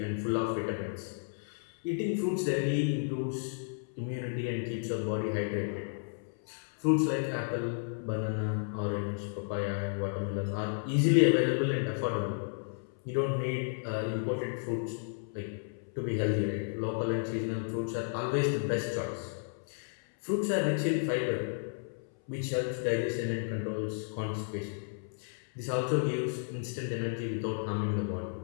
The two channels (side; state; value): right; silent; 56 dB below the other